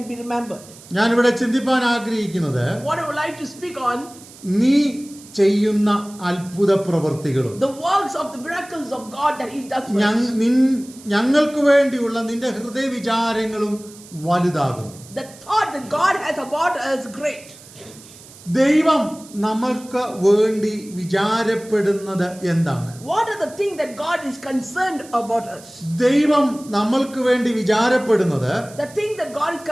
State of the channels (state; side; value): noise; right; hiss, 20 dB below the sound